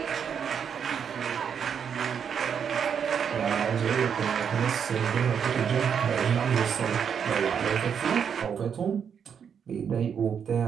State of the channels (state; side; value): quieter; left; 7.5 dB